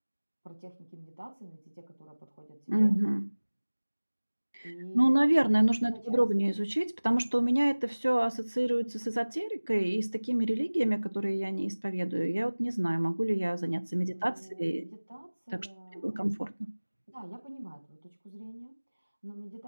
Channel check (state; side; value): inverted; both; correlation -1.00